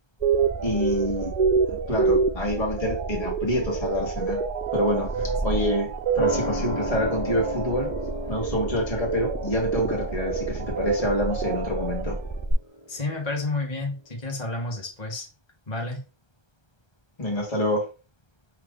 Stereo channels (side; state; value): right; late; 1.3 ms